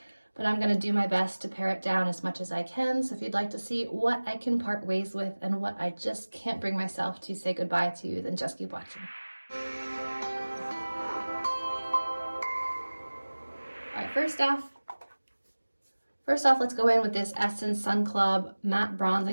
but I'm going to do my best to pare it down as much as I can. So if you'd like to see what I can part ways with and what I just can't bring myself to say goodbye to, then just keep watching. All right, first off, let's go in with this Essence Sun Club Matte Bronzing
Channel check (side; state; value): both; inverted; correlation -1.00